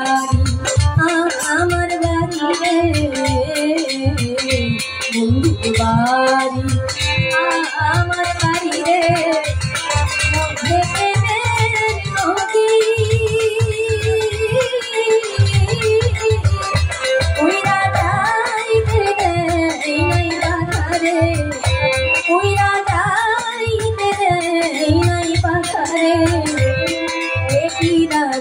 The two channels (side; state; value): both; identical; correlation 1.00